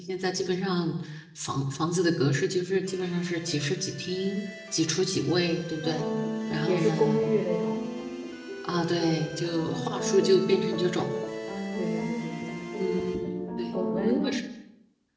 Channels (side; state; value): both; identical; correlation 1.00